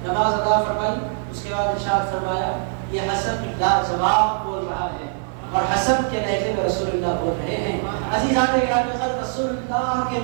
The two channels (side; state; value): left; silent; 64 dB below the other